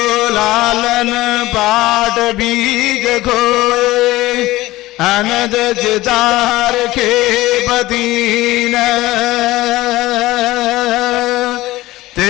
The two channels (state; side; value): quieter; right; 17.8 dB